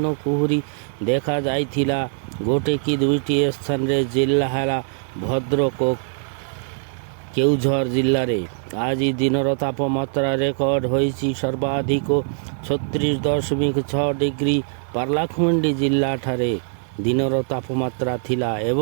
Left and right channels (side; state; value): left; silent; digital silence